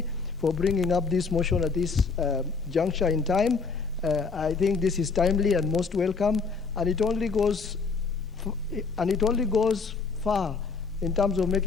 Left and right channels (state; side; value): quieter; right; 4.9 dB